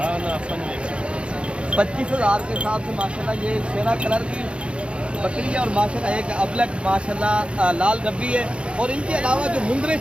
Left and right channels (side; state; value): left; late; 0.058 ms